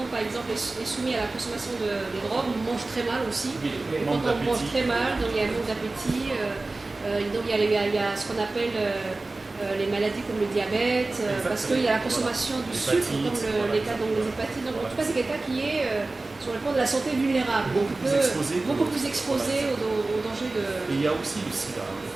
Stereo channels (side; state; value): left; quieter; 3.2 dB